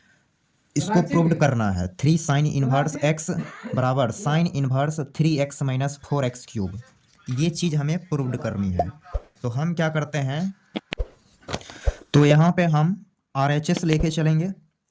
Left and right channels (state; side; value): identical; both; correlation 1.00